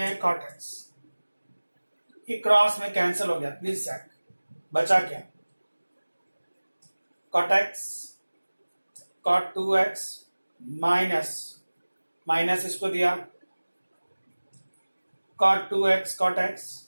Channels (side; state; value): both; inverted; correlation -1.00